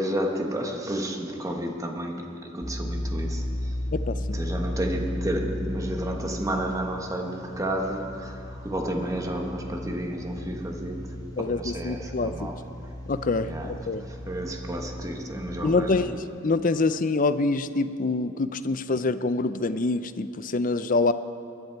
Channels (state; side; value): normal; both; correlation 0.48